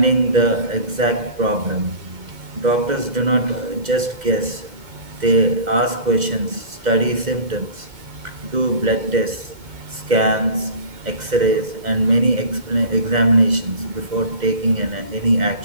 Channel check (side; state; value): left; late; 2.1 ms